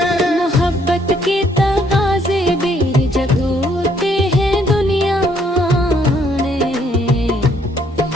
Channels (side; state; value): both; normal; correlation 0.67